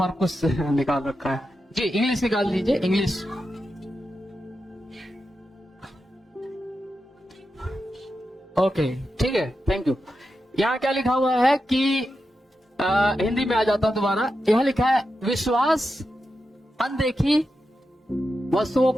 निकाल रखा है जी। इंग्लिश निकाल दीजिए, इंग्लिश। ओके, ठीक है, थैंक यू। यहाँ क्या लिखा हुआ है कि हिंदी में आ जाता हूं दोबारा। यहाँ लिखा है, विश्वास अनदेखी वस्तुओं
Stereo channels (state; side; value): normal; both; correlation 0.89